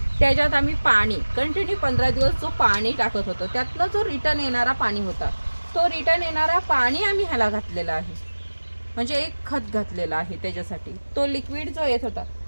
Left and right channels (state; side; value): inverted; both; correlation -1.00